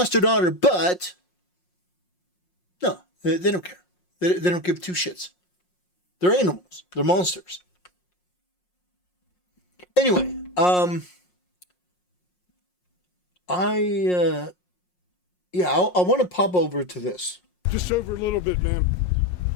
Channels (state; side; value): late; right; 5.6 ms